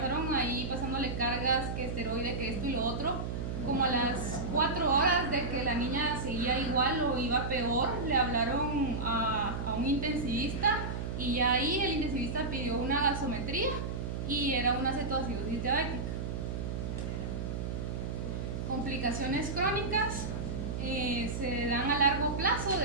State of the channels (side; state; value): right; noise; hum, 4 dB below the sound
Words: ahí pasándole cargas, que esteroide, que esto y lo otro. Como a las 4 horas de que la niña seguía igual o iba peor, le hablaron a un intensivista, y ya ahí el intensivista pidió una gasometría y era una cetoacidosis diabética. Complicaciones crónicas se dan a largo plazo